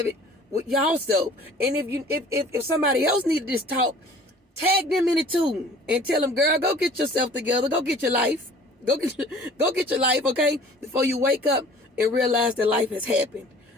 it with y'all self. And if somebody else needed this talk, tag them in it too, and tell them, girl, go get yourself together. Go get your life. Go get your life, okay? Before you wake up and realize that life has happened.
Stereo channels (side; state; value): both; normal; correlation 0.49